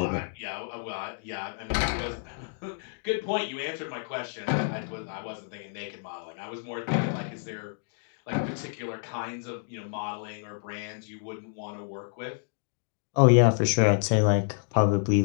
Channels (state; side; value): silent; right; digital silence